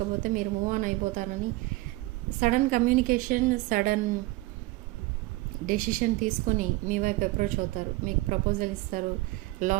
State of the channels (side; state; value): left; quieter; 19.8 dB